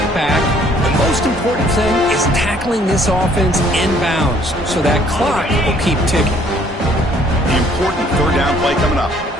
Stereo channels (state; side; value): normal; both; correlation 0.61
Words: back. The most important thing is tackling this offense inbounds so that clock will keep ticking. The important third down play coming up.